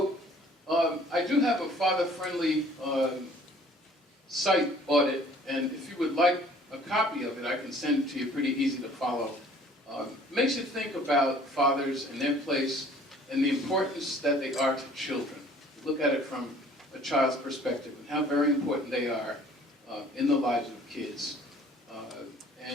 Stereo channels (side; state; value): both; normal; correlation 0.54